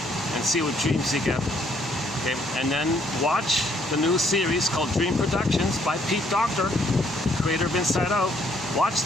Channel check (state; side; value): normal; both; correlation 0.67